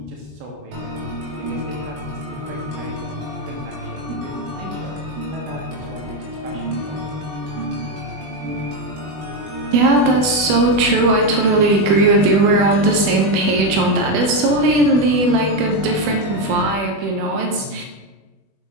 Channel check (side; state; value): left; late; 21 ms